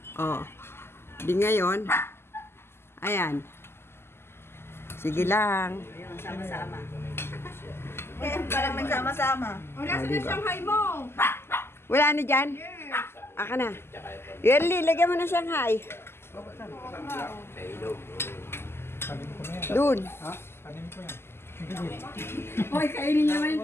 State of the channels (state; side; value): late; right; 0.12 ms